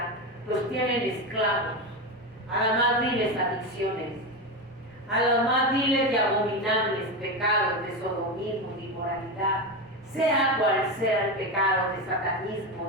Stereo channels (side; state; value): both; normal; correlation 0.16